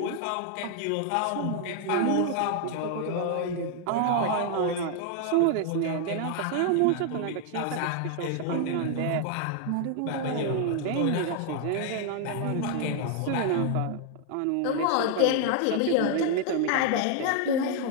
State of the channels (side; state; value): both; different; correlation 0.00